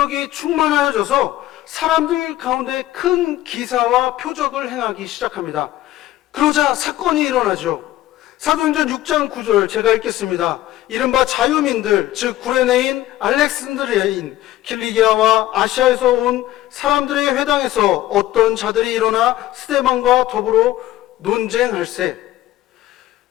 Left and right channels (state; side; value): quieter; right; 15.0 dB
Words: 충만하여져서 사람들 가운데 큰 기사와 표적을 행하기 시작합니다. 그러자 사건이 일어나죠. 사도행전 6장 9절 제가 읽겠습니다. 이른바 자유민들, 즉 구레네인, 알렉산드리아인, 킬리기아와 아시아에서 온 사람들의 회당에서 어떤 자들이 일어나 스데반과 더불어 논쟁할세.